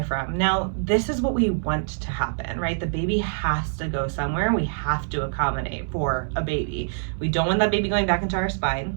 from. Now, this is what we want to happen, right? The baby has to go somewhere. We have to accommodate for a baby. We don't want that baby going back into our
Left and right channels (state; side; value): silent; left; digital silence